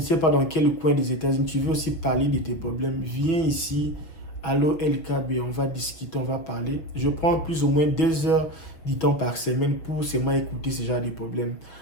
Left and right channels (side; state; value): right; late; 6.2 ms